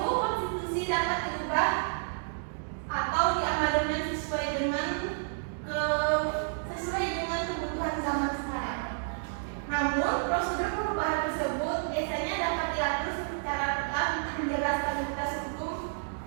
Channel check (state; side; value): silent; left; digital silence